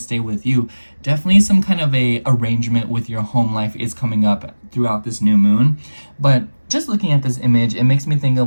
with you. Definitely some kind of a arrangement with your home life is coming up throughout this new moon. But just looking at this image, it makes me think of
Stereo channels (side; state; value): both; inverted; correlation -1.00